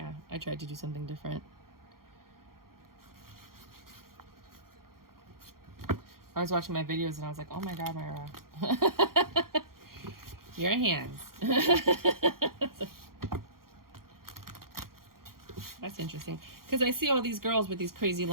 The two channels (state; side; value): late; left; 0.92 ms